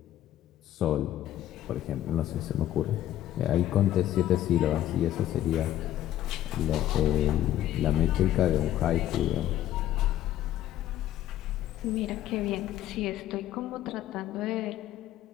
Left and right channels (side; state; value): right; quieter; 12.7 dB